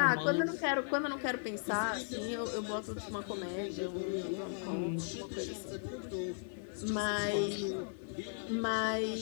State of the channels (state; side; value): silent; right; digital silence